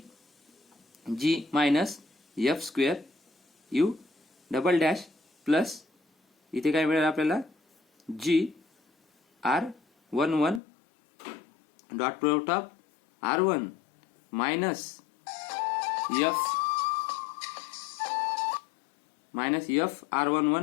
G minus F square U double dash plus इथे काय मिळालं आपल्याला G R11 dot product of R1 minus F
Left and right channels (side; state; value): right; drops out; at 10.6 s